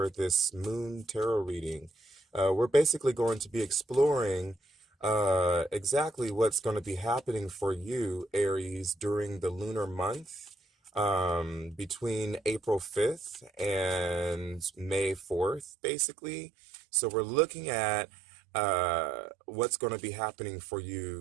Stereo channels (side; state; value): left; drops out; at 15.7 s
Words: this moon tarot reading. We're basically going to be exploring exactly what's going to be happening for you, Aries, during the lunar month between April 5th and May 4th, basically. So we're looking at what's going to be happening for